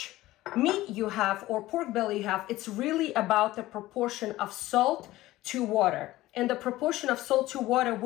meat you have or pork belly you have. It's really about the proportion of salt to water. And the proportion of salt to water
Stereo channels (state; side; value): quieter; right; 16.8 dB